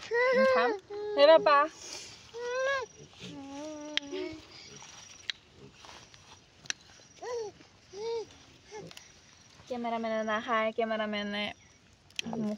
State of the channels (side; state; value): both; identical; correlation 1.00